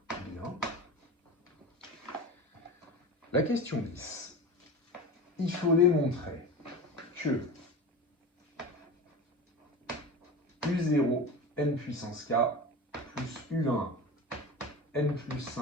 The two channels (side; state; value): both; normal; correlation 0.30